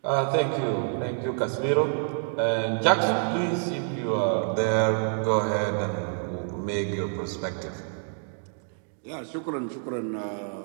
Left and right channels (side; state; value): left; silent; 60 dB below the other